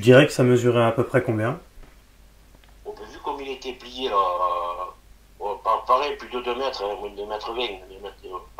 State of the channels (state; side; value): identical; both; correlation 1.00